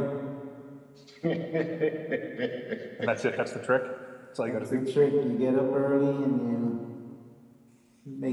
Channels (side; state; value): both; identical; correlation 1.00